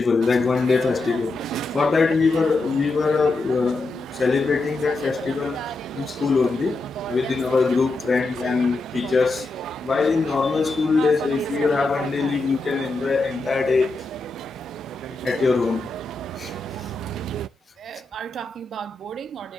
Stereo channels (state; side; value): quieter; right; 3.3 dB